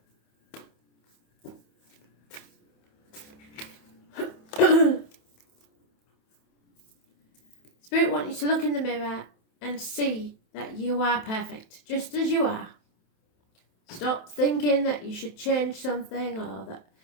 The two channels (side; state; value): right; late; 27 ms